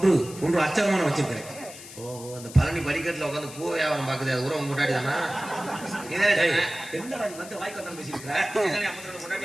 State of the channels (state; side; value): noise; left; hiss, 15 dB below the sound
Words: அச்சரமான வச்சிருக்கிறேன். ஓ அந்த பழனி படிக்கட்டுல உட்காந்து பூ வியாபாரம் பாக்குது. அது உரம் முன்னாடி தானா? என்னடா நீ வந்து வாய்க்கு வந்தாலும் பேசியிருக்கிற?